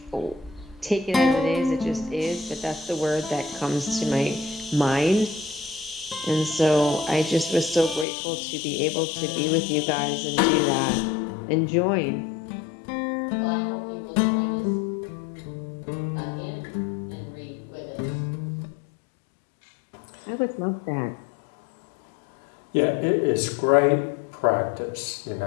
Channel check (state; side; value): drops out; right; at 8.1 s